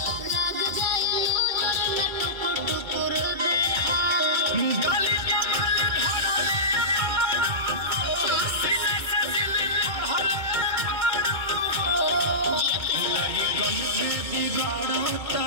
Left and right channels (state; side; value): late; left; 2.2 ms